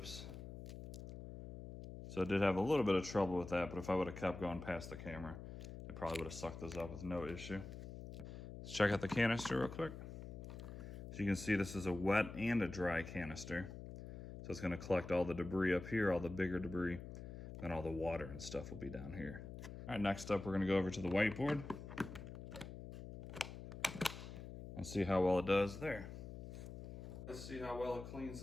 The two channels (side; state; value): left; noise; hum, 10 dB below the sound